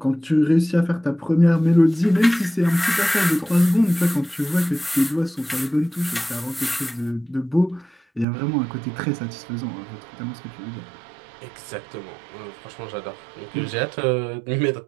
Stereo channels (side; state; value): left; drops out; at 8.2 s